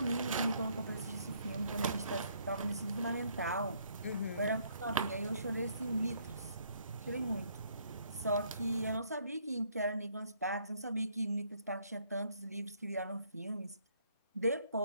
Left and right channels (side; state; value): both; inverted; correlation -0.68